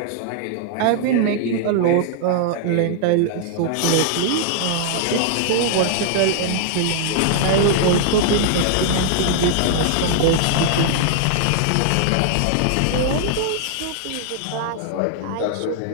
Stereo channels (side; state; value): both; different; correlation -0.01